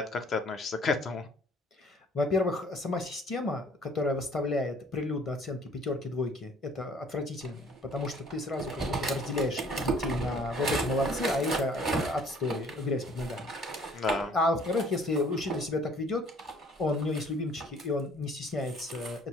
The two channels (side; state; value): both; normal; correlation 0.56